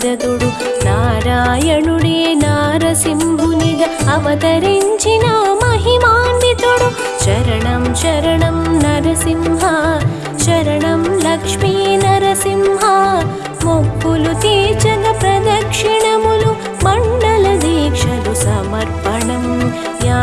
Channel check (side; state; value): both; identical; correlation 1.00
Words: నారాయణుడే నారసింహునిగా అవతరించిన మహిమాన్వితుడు శరణం శరణం నరసింహ శరణం లక్ష్మీ నరసింహ మొక్కులు తీర్చగ ప్రదక్షిణములు మండల దీక్షలు సమర్పణం